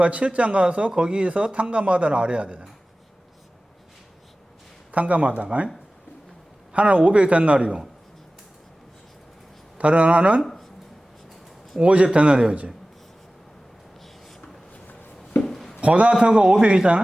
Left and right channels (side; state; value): both; normal; correlation 0.97